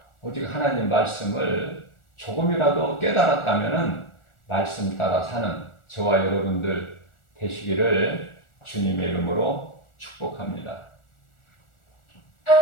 오직 하나님 말씀을 조금이라도 깨달았다면 말씀 따라 사는 저와 여러분들 되시기를 주님의 이름으로 축복합니다.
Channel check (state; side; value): late; right; 1.4 ms